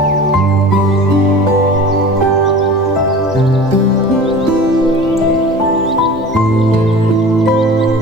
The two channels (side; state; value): both; normal; correlation 0.39